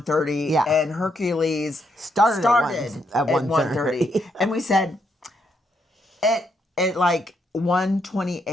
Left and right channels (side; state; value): both; normal; correlation 0.77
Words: Yeah. And Hercules Started at at 1:30. And we said at like